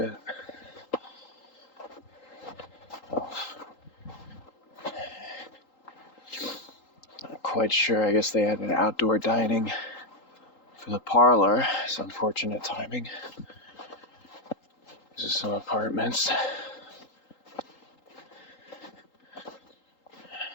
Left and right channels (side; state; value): right; late; 3.8 ms